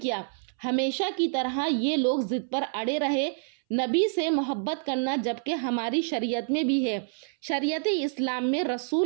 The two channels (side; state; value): left; silent; 60 dB below the other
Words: کیا۔ ہمیشہ کی طرح یہ لوگ ضد پر اڑے رہے۔ نبی سے محبت کرنا جبکہ ہماری شریعت میں بھی ہے، شریعت اسلام میں